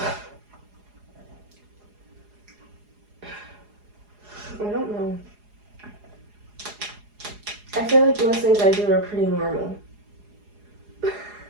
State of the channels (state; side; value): late; left; 4.8 ms